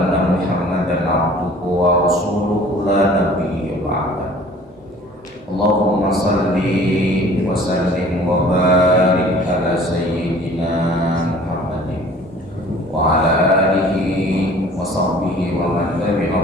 محمدا عبده ورسوله لا نبي بعده. اللهم صل وسلم وبارك على سيدنا محمد وعلى آله وصحبه ومن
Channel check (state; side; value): normal; both; correlation 0.49